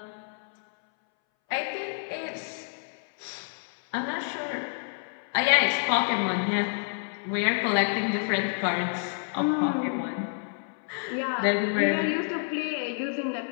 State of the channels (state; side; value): silent; right; 59 dB below the other